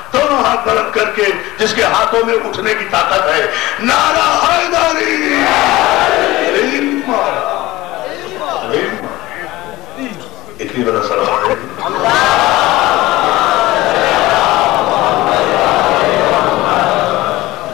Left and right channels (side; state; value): right; quieter; 18.3 dB